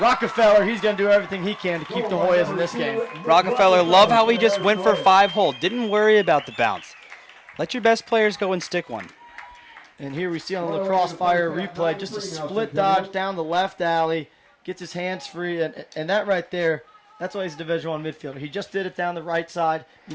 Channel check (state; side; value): identical; both; correlation 1.00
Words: he's going to do everything he can to keep the Hoyas in this game. Rockefeller, love how he just went for 5-hole. Didn't worry about the bounce. Let your best players go and stick one. And here we see on the Lacrosse Fire replay, just a split dodge down the left alley. Gets his hands free. And that right there, that's why he's a Division I midfielder. He just did it down the right side.